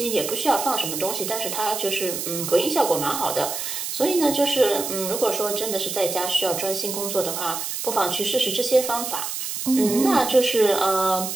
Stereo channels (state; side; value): noise; right; hiss, 4 dB below the sound